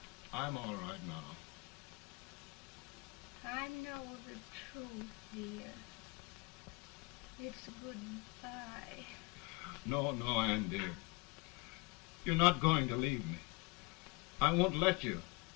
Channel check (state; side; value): quieter; right; 26.8 dB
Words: I'm all right now. I know the truth, dear. It's goodbye. No, Ann, dear. You're not going to leave me. I won't let you.